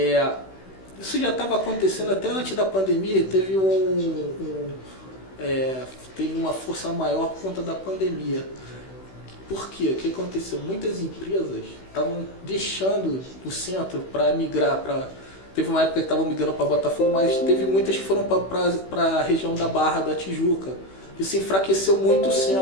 Isso já estava acontecendo até antes da pandemia, teve uma força maior por conta da pandemia. Por quê? O que aconteceu? Muitas empresas estavam deixando o centro para migrar para... Teve uma época que estavam migrando para Botafogo, mas teve muitas que foram para a região da Barra da Tijuca. Isso enfraqueceu muito o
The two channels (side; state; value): right; late; 16 ms